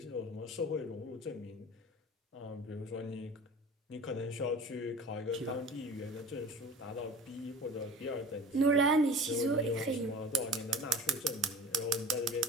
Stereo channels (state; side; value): normal; both; correlation 0.39